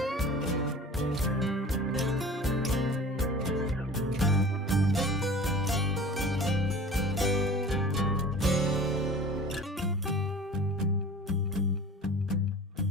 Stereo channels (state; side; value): normal; both; correlation 0.41